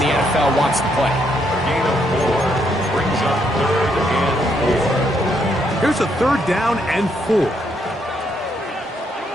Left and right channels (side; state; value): both; normal; correlation 0.74